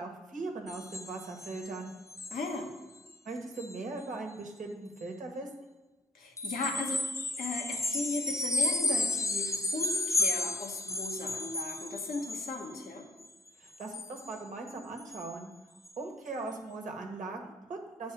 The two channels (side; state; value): both; normal; correlation 0.51